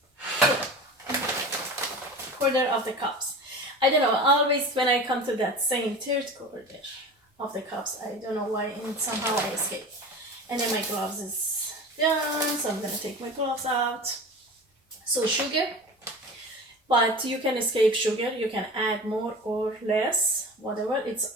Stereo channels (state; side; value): normal; both; correlation 0.34